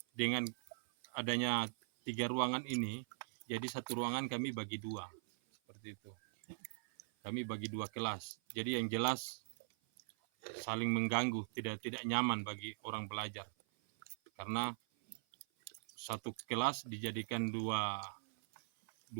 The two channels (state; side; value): silent; left; 50 dB below the other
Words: dengan adanya 3 ruangan ini, jadi 1 ruangan kami bagi 2, seperti itu. Kami bagi 2 kelas, jadi yang jelas saling mengganggu, tidak nyaman bagi orang belajar. Karena 1 kelas dijadikan 2